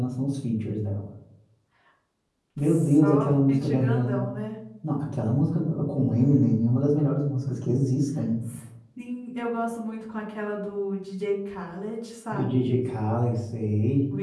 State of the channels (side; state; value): both; identical; correlation 1.00